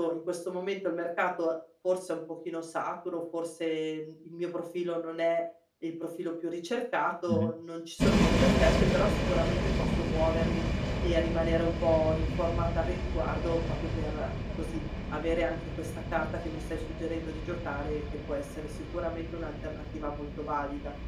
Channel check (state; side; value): identical; both; correlation 1.00